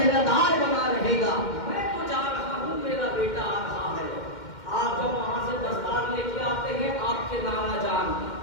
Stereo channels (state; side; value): late; right; 2.1 ms